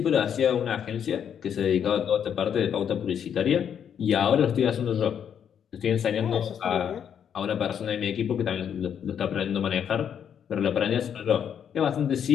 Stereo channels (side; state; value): right; quieter; 8.4 dB